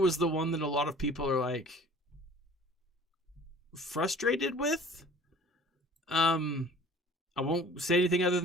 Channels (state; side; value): normal; both; correlation 0.49